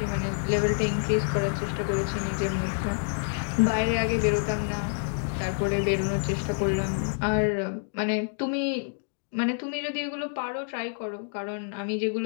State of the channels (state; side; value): silent; right; digital silence